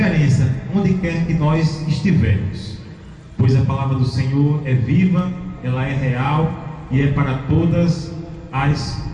onde quer que nós estivermos, pois a palavra do Senhor é viva, ela é real e é para todas as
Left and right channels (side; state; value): both; identical; correlation 1.00